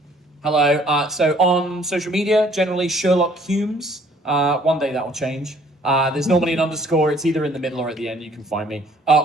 Hello. So on social media, generally Sherlock Hulmes. One day that will change. There's normally an underscore. It's either in the middle or at the end. You can find me.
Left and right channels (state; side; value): normal; both; correlation 0.59